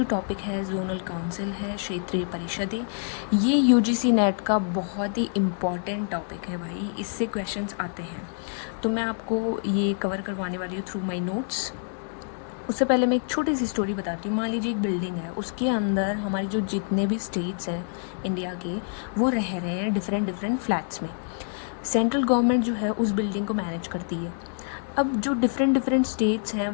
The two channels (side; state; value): right; silent; 60 dB below the other